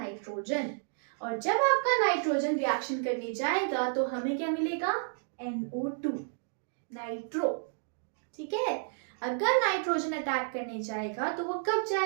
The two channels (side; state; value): left; silent; digital silence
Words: और जब आपका नाइट्रोजन रिएक्शन करने जाएगा तो हमें क्या मिलेगा? NO2, nitro. ठीक है, अगर नाइट्रोजन अटैक करने जाएगा तो वो कब